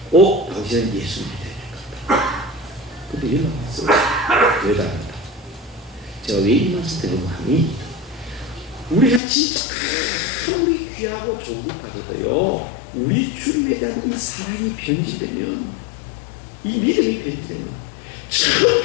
꼭 당신은 예수님이 돼야 될 것 같다. 근데 연락 왔어요. 왜 다른다? 제가 왜 이 말씀 드리는 하니 우리가 진짜 아무리 귀하고 좋은 것 같아도요, 우리 주님에 대한 이 사랑이 변질되면, 이 믿음이 변질되면, 참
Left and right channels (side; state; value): right; drops out; at 9.2 s